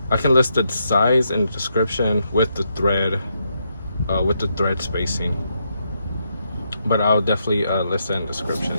I can list the size and description with the thread spacing, but I'll definitely list that in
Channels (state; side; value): inverted; both; correlation -0.79